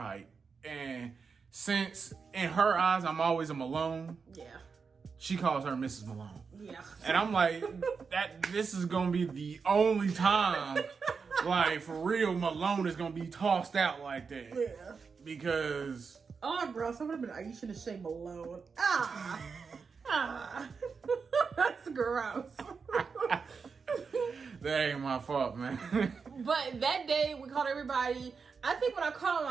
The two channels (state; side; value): quieter; left; 5.3 dB